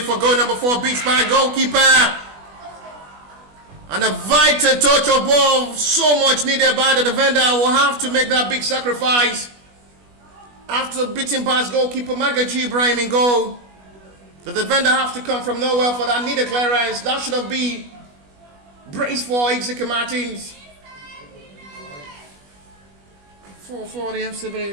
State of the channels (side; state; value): left; late; 21 ms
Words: goal number 4, beats by goalkeeper. And a vital touch of ball, so much needed by the defender, will have to make that big sacrifice. After beating past goalkeeper Magaji Ibrahim in goal, the defender have to come from nowhere for that needed clearance. That should have been brace for Exeter Martins. 4 for the FC